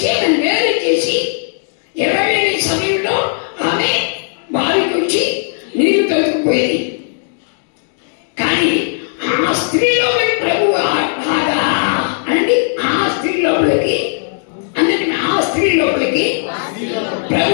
ఆయన వేరు చేసి 20 సమయంలో ఆమె వారికి వచ్చి నీరు తొలుకుపోయేది. కానీ ఆ స్త్రీలో ప్రభు రాగా అనండి, ఆ స్త్రీ లోపలికి అందరి ఆ స్త్రీ లోపలికి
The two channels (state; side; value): silent; right; digital silence